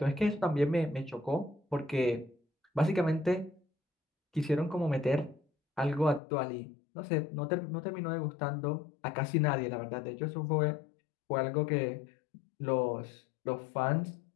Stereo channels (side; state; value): right; drops out; at 6.2 s